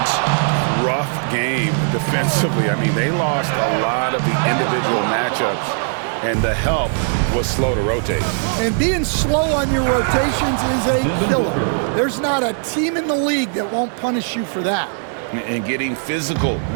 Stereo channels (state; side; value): silent; left; 67 dB below the other